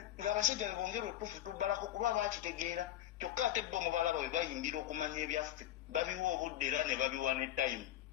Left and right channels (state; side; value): quieter; right; 12.8 dB